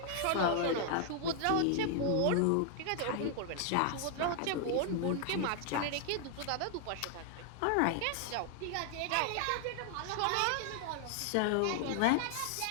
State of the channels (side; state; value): both; different; correlation 0.00